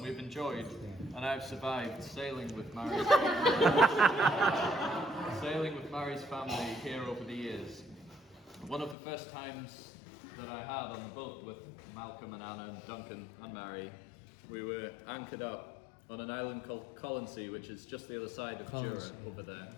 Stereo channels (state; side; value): drops out; right; at 9.0 s